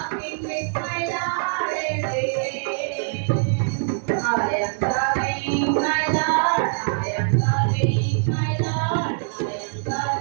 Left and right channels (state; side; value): silent; left; 63 dB below the other